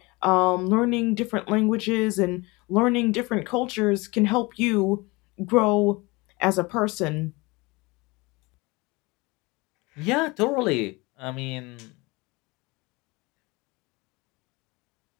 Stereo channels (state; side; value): quieter; right; 24.5 dB